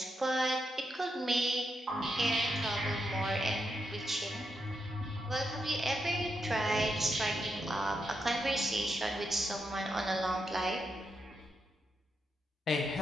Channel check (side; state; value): both; normal; correlation 0.84